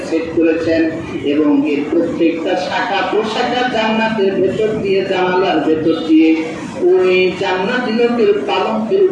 সেট করেছেন, এবং এর প্রত্যেকটা শাখা প্রশাখা জান্নাতের ভেতর দিয়ে, জানালার ভেতর দিয়ে ওই জান্নাতি লোকের পালঙ্কের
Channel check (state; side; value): identical; both; correlation 1.00